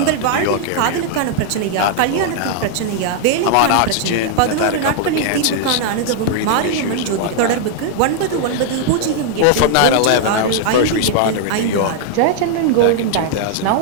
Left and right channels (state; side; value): different; both; correlation -0.01